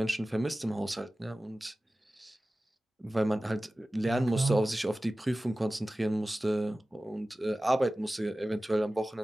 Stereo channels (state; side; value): normal; both; correlation 0.96